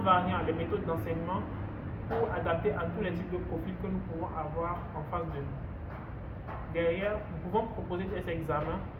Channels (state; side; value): identical; both; correlation 1.00